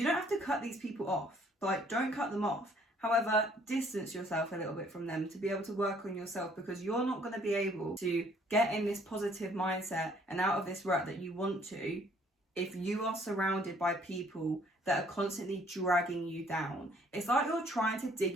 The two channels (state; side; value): normal; both; correlation 0.61